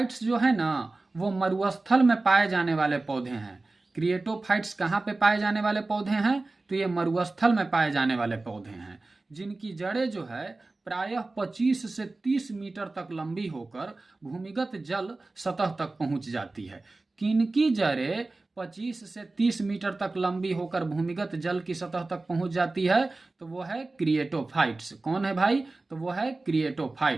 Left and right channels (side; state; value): left; quieter; 3.2 dB